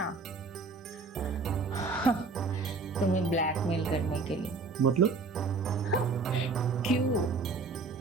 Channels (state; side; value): quieter; left; 4.1 dB